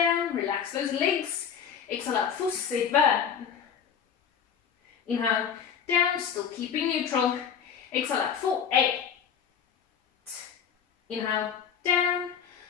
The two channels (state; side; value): quieter; right; 7.7 dB